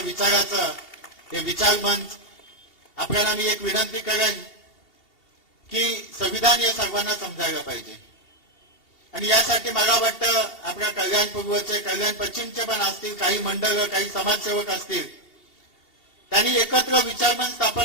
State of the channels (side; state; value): right; late; 2.7 ms